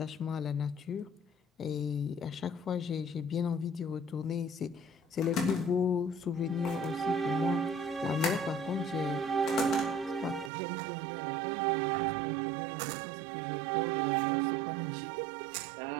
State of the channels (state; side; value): drops out; left; at 10.5 s